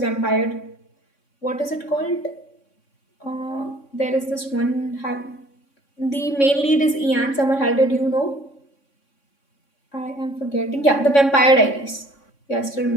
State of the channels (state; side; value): late; right; 3.6 ms